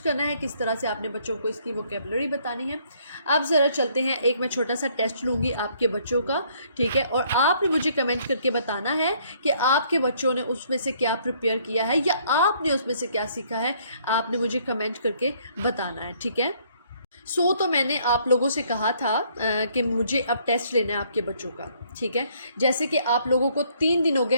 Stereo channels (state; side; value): inverted; both; correlation -0.64